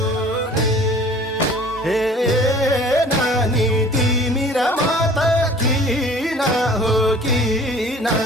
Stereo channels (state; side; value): normal; both; correlation 0.48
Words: हे नानी तिमी र म त किन हो किन